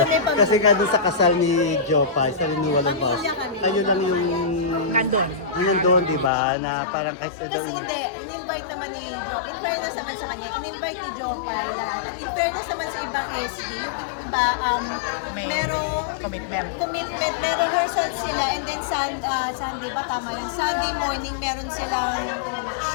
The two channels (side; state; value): right; drops out; at 6.3 s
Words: pamilya. Kasi nga doon sa kasal ni Jopa, sa renewal of vows, Pamilya kami. kayo lang yung Nandun. nandun, di ba? Na parang kasi Kasi hindi, in-invite naman ni Joe. In fairness naman sa kanya, in-invite ni Joe Pai lahat. At in fairness naman sa ibang SB, yung iba, May merong commitment. may rehearsal sila and then Sunday ba tama yun? Sunday morning meron silang